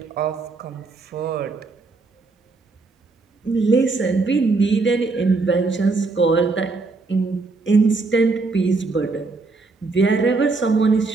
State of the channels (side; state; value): left; quieter; 3.8 dB